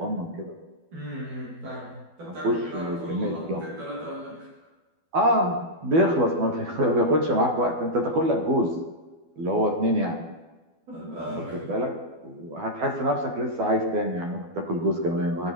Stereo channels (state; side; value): late; left; 12 ms